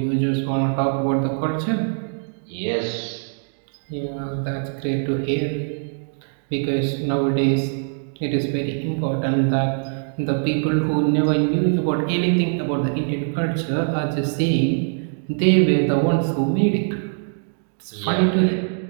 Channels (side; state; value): left; silent; digital silence